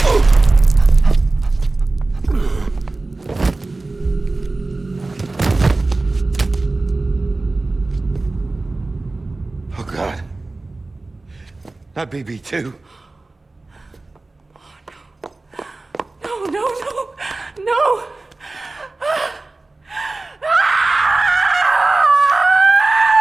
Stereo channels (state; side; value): quieter; left; 3.2 dB